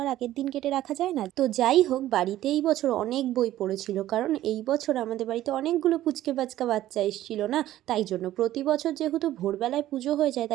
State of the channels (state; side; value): quieter; left; 13.8 dB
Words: আর আগের দিন কেটে রাখা যায় না। তো যাই হোক, বাড়িতে এই বছর অনেক বই পড়েছিল, কারণ এই বছর আমাদের বাড়িতে অনেকগুলো পুচকে বাচ্চা বাচ্চা এসেছিল না, তাই জন্য। প্রতি বছর যেহেতু ভোরবেলায় পুজো হয়ে যায়,